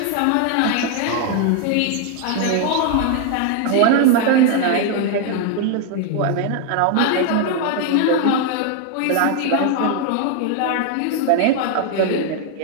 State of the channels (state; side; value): different; both; correlation 0.00